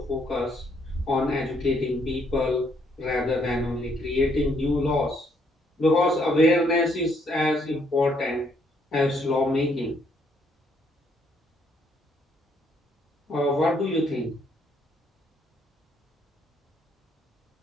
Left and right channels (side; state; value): both; normal; correlation 0.70